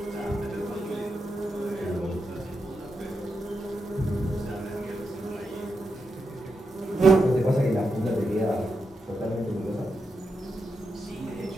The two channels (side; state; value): both; normal; correlation 0.86